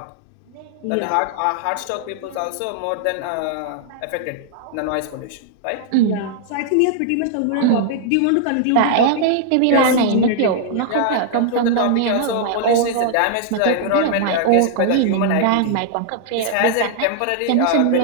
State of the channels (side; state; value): both; different; correlation -0.01